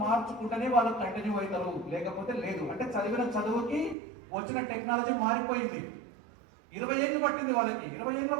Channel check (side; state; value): left; drops out; at 4.0 s